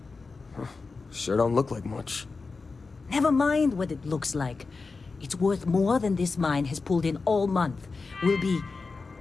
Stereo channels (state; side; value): quieter; right; 4.2 dB